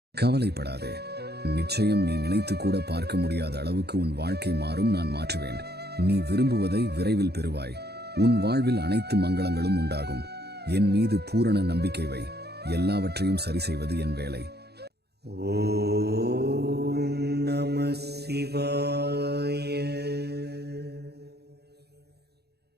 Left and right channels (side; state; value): left; late; 0.47 ms